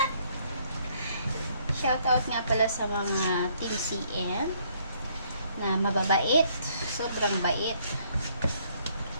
Shoutout nga pala sa mga Team CM na mababait. Sobrang bait.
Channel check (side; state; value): both; inverted; correlation -0.66